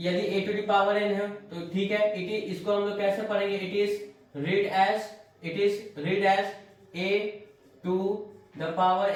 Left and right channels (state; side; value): identical; both; correlation 1.00